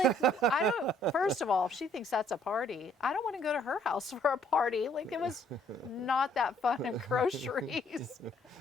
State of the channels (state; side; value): normal; both; correlation 0.64